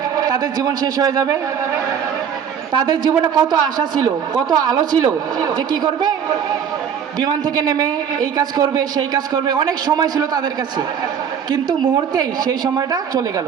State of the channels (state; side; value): quieter; left; 7.8 dB